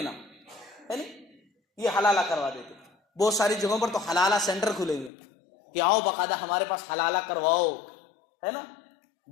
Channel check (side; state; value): right; drops out; at 5.1 s